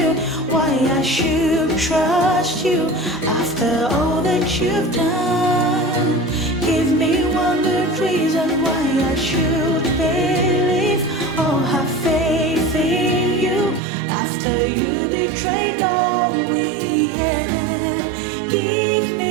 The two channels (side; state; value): left; drops out; at 13.8 s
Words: why I should trust you after all that you've done. Give me one good reason why I should believe or have faith in you after you betrayed betrayed all we had. Give